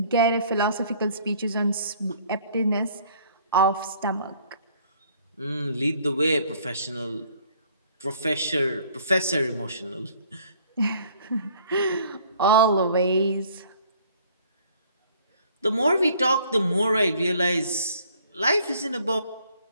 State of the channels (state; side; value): inverted; both; correlation -0.58